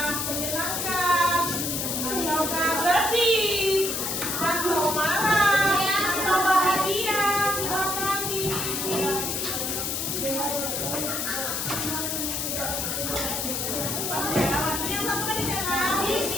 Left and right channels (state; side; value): noise; left; hiss, 1 dB below the sound